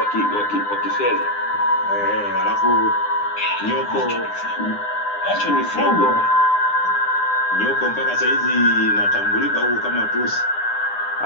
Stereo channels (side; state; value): right; late; 9.8 ms